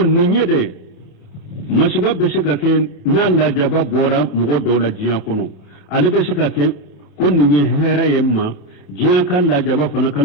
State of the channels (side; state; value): right; late; 28 ms